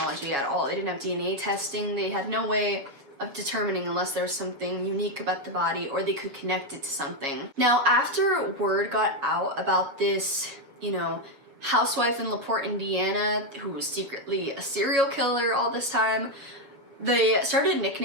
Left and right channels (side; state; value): left; late; 7.4 ms